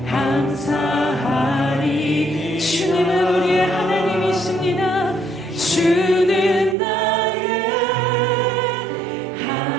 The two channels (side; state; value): left; drops out; at 6.8 s